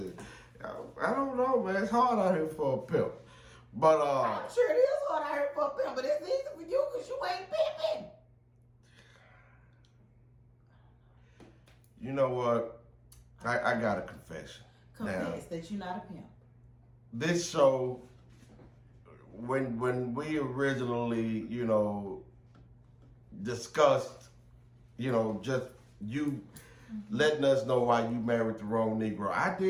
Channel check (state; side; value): identical; both; correlation 1.00